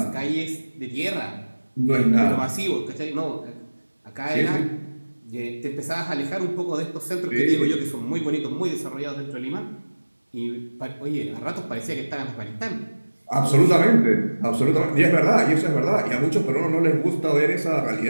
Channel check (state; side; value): inverted; both; correlation -1.00